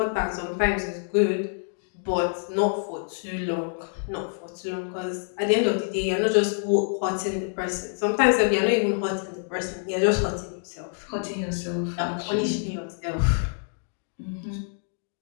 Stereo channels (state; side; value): silent; right; 61 dB below the other